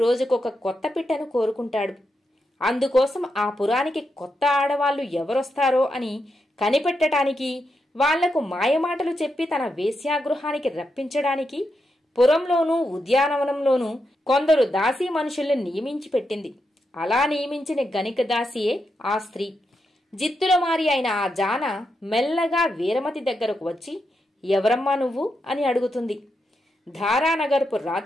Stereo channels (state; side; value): normal; both; correlation 0.84